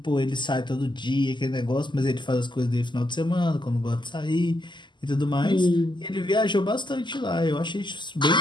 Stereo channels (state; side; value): late; right; 0.22 ms